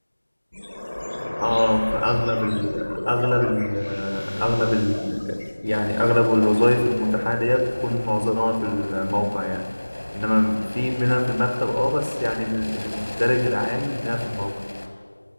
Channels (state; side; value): inverted; both; correlation -1.00